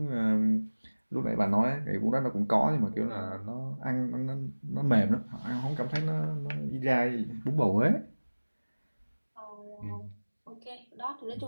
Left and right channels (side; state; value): both; inverted; correlation -1.00